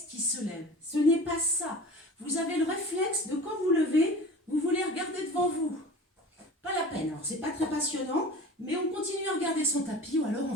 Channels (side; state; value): both; normal; correlation 0.38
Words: qui se lève. Ce n'est pas ça. Vous avez le réflexe de quand vous levez, vous voulez regarder devant vous. Pas la peine. Alors, c'est pas très passionnant, mais on continue à regarder son tapis ou alors on